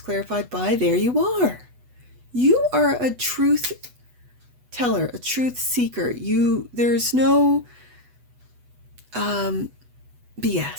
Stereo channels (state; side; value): late; left; 8.1 ms